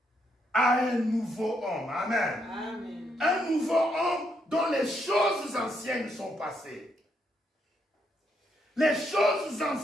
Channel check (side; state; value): both; normal; correlation 0.77